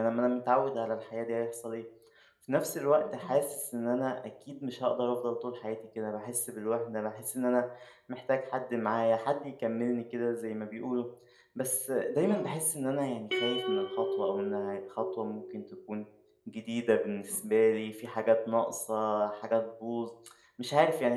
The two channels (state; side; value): identical; both; correlation 1.00